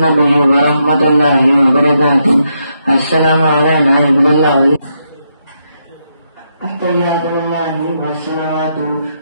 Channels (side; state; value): both; inverted; correlation -0.80